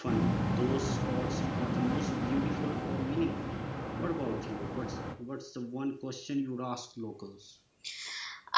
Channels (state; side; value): identical; both; correlation 1.00